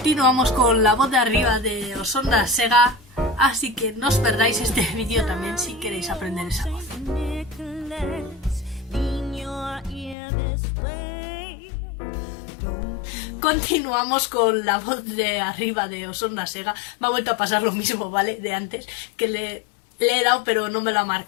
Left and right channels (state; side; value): drops out; right; at 10.2 s